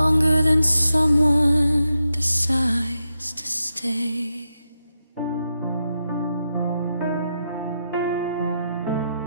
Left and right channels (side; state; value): both; inverted; correlation -0.87